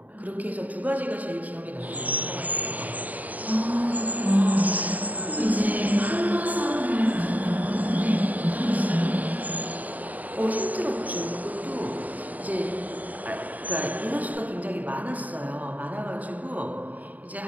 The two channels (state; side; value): late; left; 0.076 ms